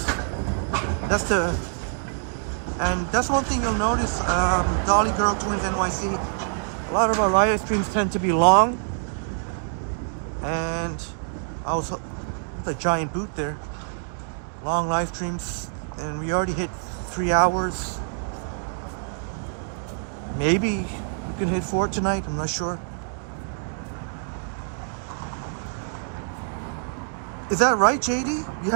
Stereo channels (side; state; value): left; silent; digital silence